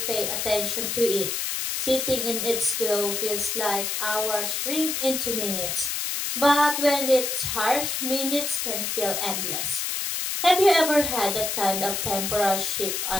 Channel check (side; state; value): left; noise; hiss, 1 dB below the sound